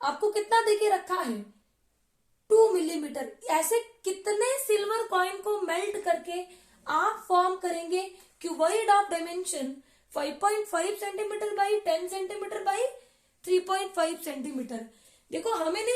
आपको कितना देके रखा है, 2 मिलीमीटर। ऐसे कितने सिल्वर कॉइन को मेल्ट करके आप फॉर्म करेंगे cuboid of dimension 5.5 centimetre by 10 centimetre by 3.5 centimetre. देखो हमें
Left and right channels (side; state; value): both; identical; correlation 1.00